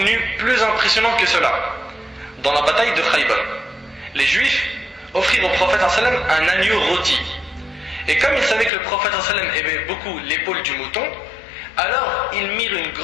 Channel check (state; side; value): drops out; right; at 8.7 s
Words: plus impressionnant que cela. Dans la bataille de Khaybar, les juifs offrirent au prophète sallam un agneau rôti. Et comme ils savaient que le prophète sallam aimait beaucoup l'épaule du mouton, alors ils mirent une